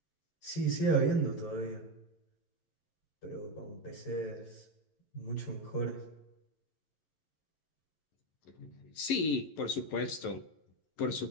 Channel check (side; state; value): right; late; 11 ms